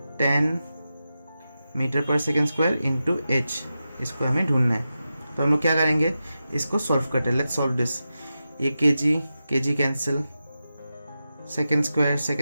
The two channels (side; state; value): both; inverted; correlation -0.91